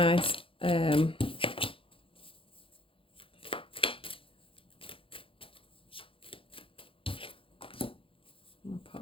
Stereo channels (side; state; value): right; late; 0.26 ms